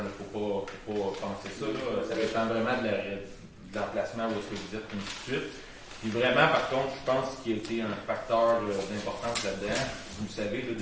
ne faut pas penser ça. Là. Ça dépend vraiment de l'emplacement où est-ce que vous êtes, et ainsi de suite. Puis vraiment, par contre, je pense qu'il y a été un facteur d'importance là-dedans. Vous le savez, là,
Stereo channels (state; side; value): identical; both; correlation 1.00